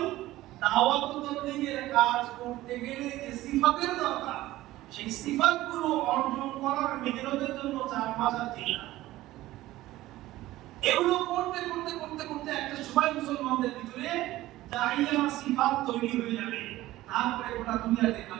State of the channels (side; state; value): left; quieter; 16.4 dB